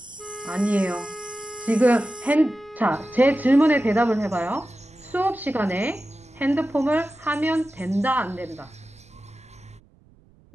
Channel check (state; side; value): noise; right; rumble, 29 dB below the sound